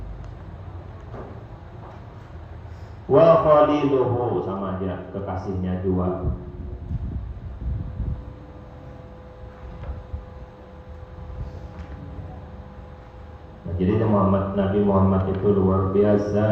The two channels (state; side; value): identical; both; correlation 1.00